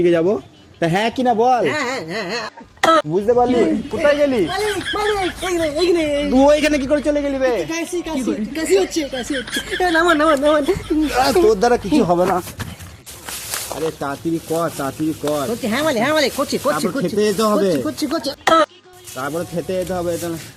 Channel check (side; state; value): both; identical; correlation 1.00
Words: যাবো। তা হ্যাঁ কি না বল। হ্যাঁ বুঝতে পারলি? কোথায় গেলি তুই? ওইখানে কি করে চলে গেলি বে? কাশি হচ্ছে নামান। তোর দ্বারা কিছু হবে না। আরে তাড়াতাড়ি কর। হ্যাঁ মালিক করছি। খেতে যেতে হবে। করছি। তারপরে খেতে যেতে হবে।